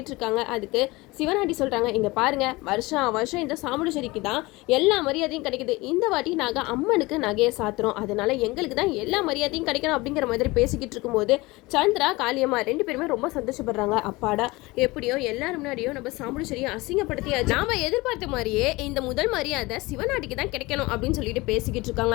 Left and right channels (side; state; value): right; quieter; 22.1 dB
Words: இருக்காங்க. அதுக்கு சிவனாண்டி சொல்றாங்க, இங்க பாருங்க வருஷம் இந்த சாமுண்டேஸ்வரிக்கு தான் எல்லா மரியாதையும் கிடைக்குது, இந்த வாட்டி நாங்க அம்மனுக்கு நகையை சாத்துறோம், அதனால எங்களுக்கு தான் எல்லா மரியாதையும் கிடைக்கணும் அப்படிங்கிற மாதிரி பேசிக்கிட்டு இருக்கும்போது சந்திரா காளியம்மா ரெண்டு பேருமே ரொம்ப சந்தோஷப்படுறாங்க. அப்பாடா எப்படியோ எல்லாரும் முன்னாடியும் நம்ம சாமுண்டேஸ்வரியை அசிங்கப்படுத்தியாச்சு, நாம எதிர்பார்த்த மாதிரியே இந்த முதல் மரியாதை சிவனாண்டிக்கு தான் கிடைக்கணும் அப்படின்னு சொல்லிட்டு பேசிக்கிட்டு இருக்காங்க.